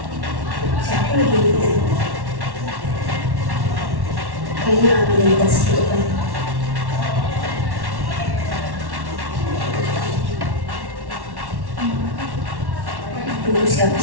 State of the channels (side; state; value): left; late; 1.1 ms